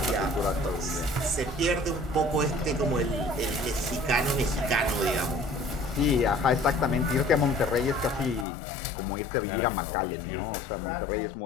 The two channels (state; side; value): drops out; right; at 8.5 s